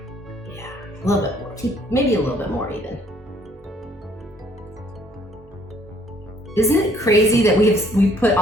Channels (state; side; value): normal; both; correlation 0.62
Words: Yeah, a little bit more. Maybe a little bit more even. Isn't it crazy that we put